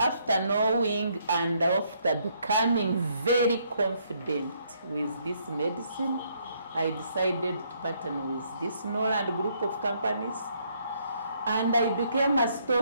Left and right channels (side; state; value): both; inverted; correlation -0.70